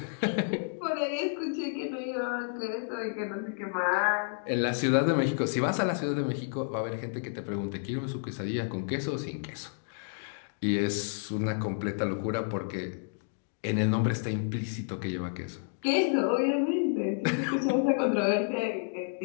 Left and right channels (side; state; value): right; silent; digital silence